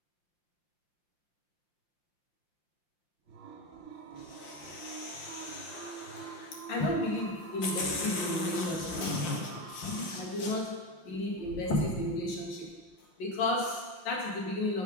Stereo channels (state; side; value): late; right; 5.7 ms